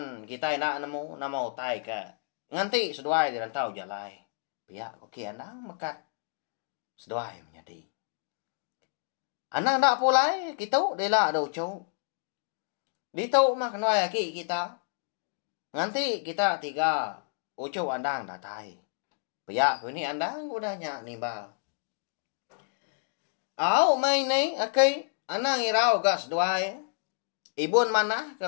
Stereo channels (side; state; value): right; silent; digital silence